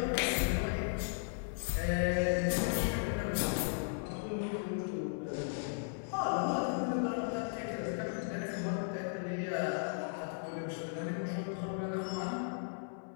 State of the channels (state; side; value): silent; right; 54 dB below the other